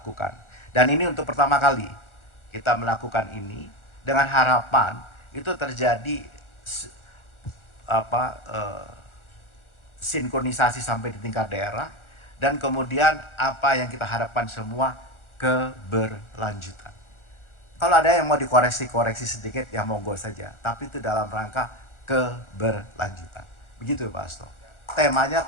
Dan ini untuk pertama kali kita melakukan ini dengan harapan itu terjadi sinkronisasi sampai di tingkat daerah, dan kemudian apa yang kita harapkan semua, keberlanjutan. Kalau ada yang mau dikoreksi sedikit ya monggo saja, tapi itu dalam rangka keberlanjutan. Begitu Pak Asto. Temanya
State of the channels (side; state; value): right; late; 1.4 ms